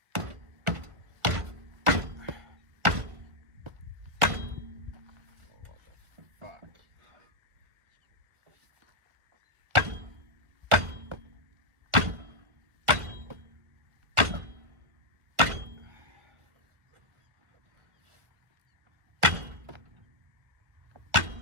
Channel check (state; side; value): late; left; 1.4 ms